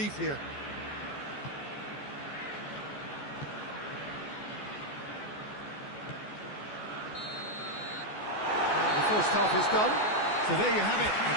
here. And the first half is done. So there you have it, a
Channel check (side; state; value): right; late; 14 ms